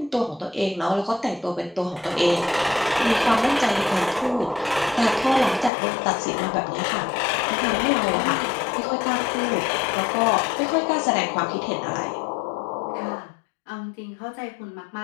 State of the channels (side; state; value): right; drops out; at 5.7 s